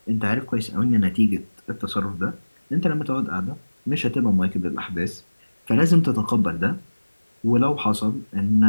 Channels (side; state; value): both; inverted; correlation -1.00